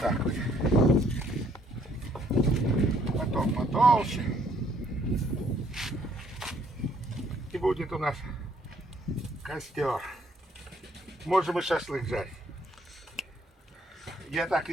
вот. Потом потолще. И будет у нас костер. Можем и шашлык жарить. Я так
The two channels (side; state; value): both; normal; correlation 0.66